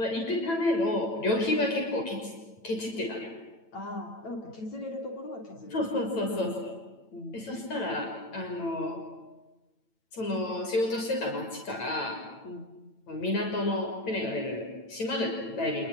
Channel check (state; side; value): late; right; 9.0 ms